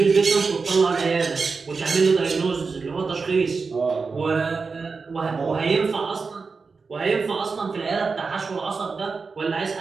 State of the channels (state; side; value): quieter; left; 4.7 dB